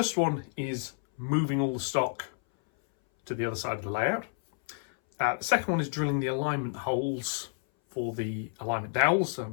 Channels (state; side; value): silent; right; 58 dB below the other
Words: one is moving all the stock to the other side of the layout. The second one is drilling the alignment holes for the alignment dowels. So I'm